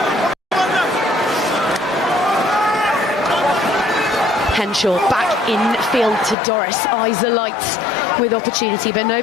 Henshaw back in field to Doris, eyes alight with opportunity, but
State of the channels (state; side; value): drops out; right; at 6.4 s